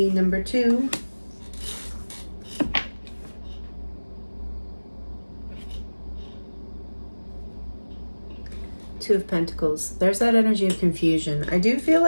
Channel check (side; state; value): both; inverted; correlation -1.00